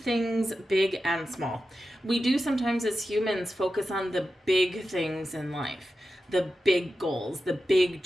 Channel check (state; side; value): normal; both; correlation 0.91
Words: things big and small. We do sometimes as humans focus on the big things in life, the big goals, the big